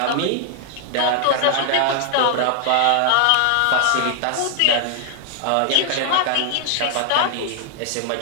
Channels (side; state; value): both; different; correlation 0.00